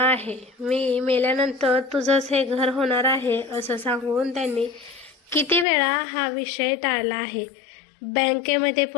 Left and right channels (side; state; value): right; drops out; at 5.7 s